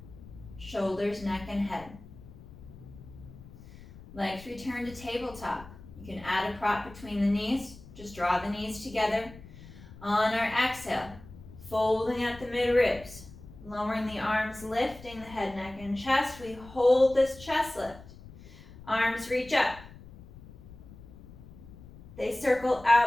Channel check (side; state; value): left; noise; rumble, 18 dB below the sound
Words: Shoulders, neck, and head. Legs return to tabletop. You can add a prop between the knees. Just draw the knees together. On our exhale, folding at the mid-ribs. Lowering the arms, lifting the head, neck, and chest. We hold this chest lift. Arms reach up. They circle